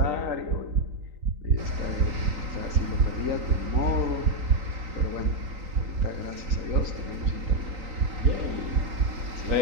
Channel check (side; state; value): left; late; 3.9 ms